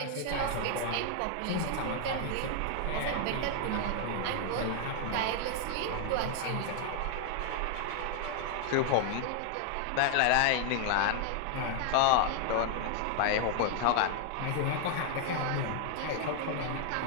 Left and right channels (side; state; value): both; different; correlation 0.00